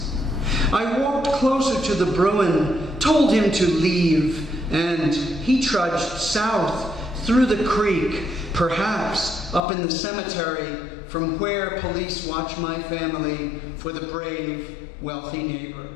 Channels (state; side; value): drops out; right; at 9.6 s